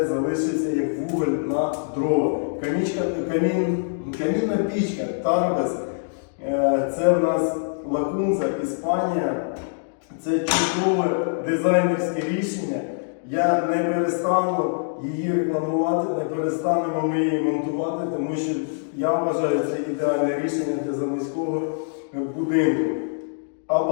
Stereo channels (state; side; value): silent; right; digital silence